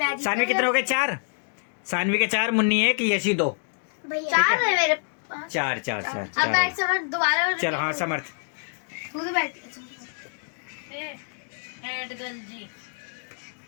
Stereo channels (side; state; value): right; silent; digital silence